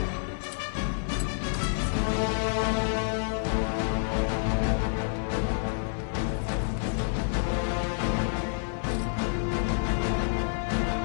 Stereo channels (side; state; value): right; silent; 59 dB below the other